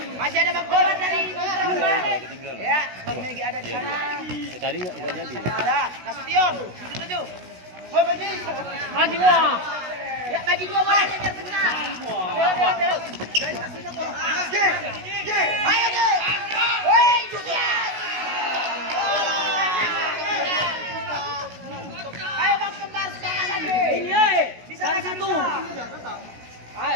masih ada bak bola dari ketinggalan. Ya, Bang Megi ada di sana. Tadi enggak jadi. Ada, Nasution. Setuju. Oh, bagi. Maju wah. Ya, bagi dua bola biar benar. Ambil. Ayo, Ge. Woi, Julian. Ayo Bang Kembar sekarang lagi. Iya. Bisa satu.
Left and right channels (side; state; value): left; late; 16 ms